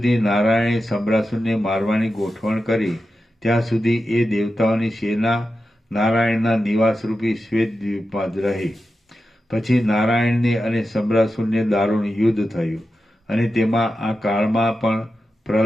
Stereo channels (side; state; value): both; normal; correlation 0.90